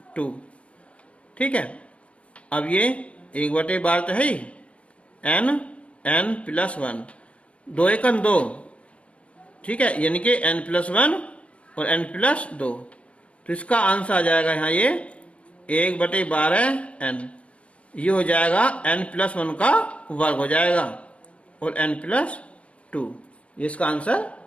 2, ठीक है। अब ये 1 बटे 12 तो है ही, n प्लस 1, 2 1 2, ठीक है, यानी कि n प्लस 1 और n प्लस 2, तो इसका आंसर आ जाएगा यहाँ ये 1 बटे 12 n, ये हो जाएगा n प्लस 1 का वर्ग हो जाएगा और n प्लस 2, ये इसका आंसर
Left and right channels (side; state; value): right; late; 0.062 ms